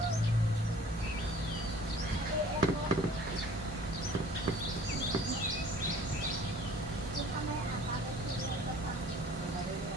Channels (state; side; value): normal; both; correlation 0.51